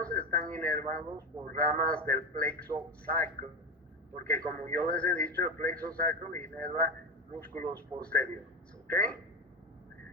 están inervados por ramas del plexo sacro, porque como yo les he dicho, el plexo sacro inerva músculos posteriores, ¿ok?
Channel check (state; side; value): normal; both; correlation 0.19